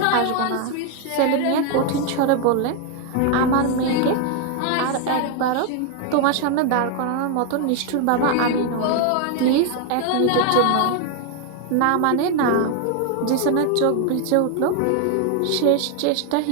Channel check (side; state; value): both; different; correlation 0.01